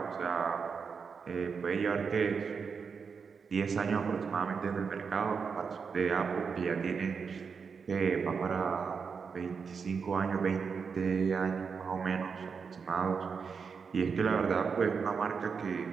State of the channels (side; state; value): left; quieter; 5.8 dB